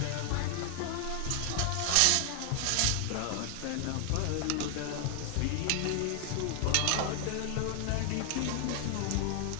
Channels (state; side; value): different; both; correlation 0.00